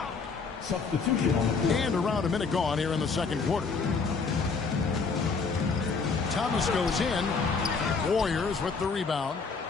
Substitution. And around a minute gone here in the second quarter. Thomas goes in. Warriors with the rebound.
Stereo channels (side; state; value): right; quieter; 4.8 dB